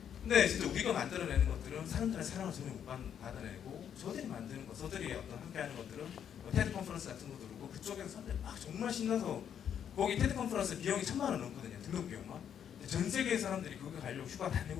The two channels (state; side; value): quieter; right; 8.8 dB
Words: 근데 진짜 우리가 만들어내는 것들은 사람들의 사랑을 전혀 못 받아내고 저들이 만드는 것, 저들이 어떤 함께하는 것들은 뭐 테드 컨퍼런스 같은 것도 그렇고 그쪽에서 사람들이 막 정말 신나서 거기 테드 컨퍼런스 비용이 1,000만 원 넘거든요. 등록 비용만. 근데 전 세계의 사람들이 거기 가려고 휴가 다